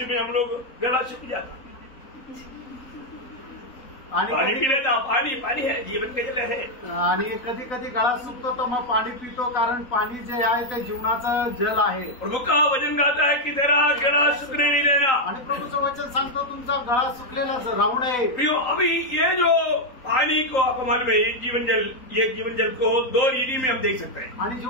में हम लोग गला सूख जाता। आणि पानी पी लेता, पानी है, जीवन के जल है। आणि कधी कधी गळा सुकतो तर मग पाणी पितो, कारण पाणी जे आहे ते जीवनाचं जल आहे। प्रभु का वचन गाता है कि तेरा गला सूखने नहीं देना। आणि प्रभूचं वचन सांगतो तुमचा गळा सुकलेला राहू नये। प्रियो, अभी ये जो पानी को आपको मालूम है, ये जीवन जल को दो रीति में हम देख सकते हैं। आणि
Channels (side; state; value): right; late; 3.8 ms